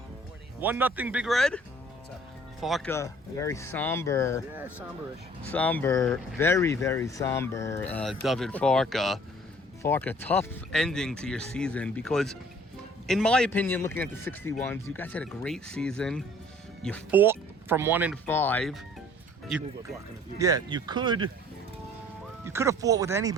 1-0 Big Red. Farka, very somber. Yeah, somber-ish. Somber, very, very somber, David Farka. Farka, tough ending to your season because, in my opinion, looking at the 61s, you guys had a great season. You fought from 1-5. You could have fought with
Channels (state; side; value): normal; both; correlation 0.53